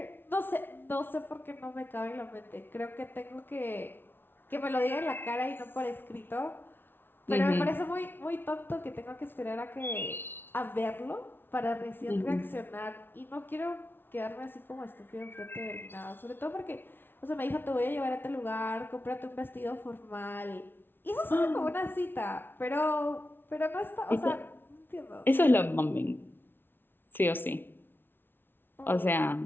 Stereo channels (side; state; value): right; late; 0.10 ms